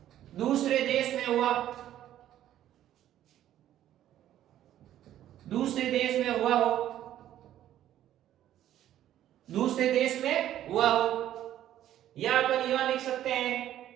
दूसरे देश में हुआ, दूसरे देश में हुआ हो, दूसरे देश में हुआ हो। या अपन यह लिख सकते हैं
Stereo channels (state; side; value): quieter; left; 12.1 dB